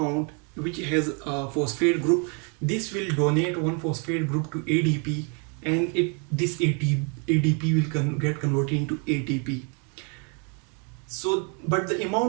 which has a phosphate group. This will donate one phosphate group to ADP, and this ADP will get converted into ATP. So, but the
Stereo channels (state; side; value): quieter; left; 37.2 dB